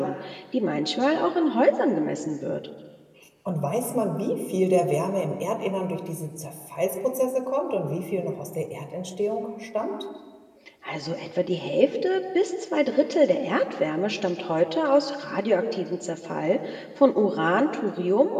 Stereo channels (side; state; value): both; identical; correlation 1.00